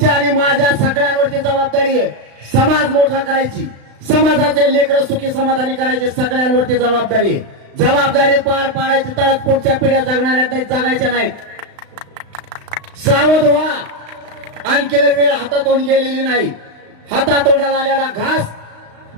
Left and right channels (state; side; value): late; left; 35 ms